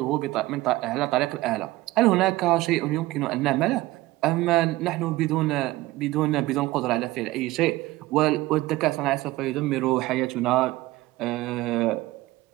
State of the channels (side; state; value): left; quieter; 18.2 dB